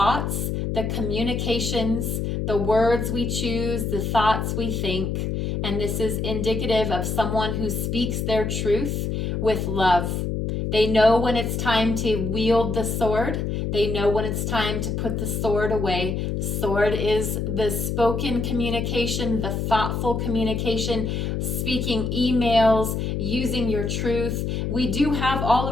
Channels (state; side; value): noise; left; hum, 1 dB below the sound